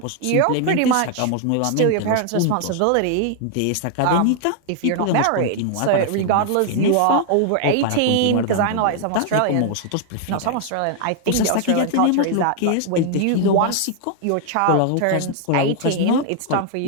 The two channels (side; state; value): both; different; correlation 0.00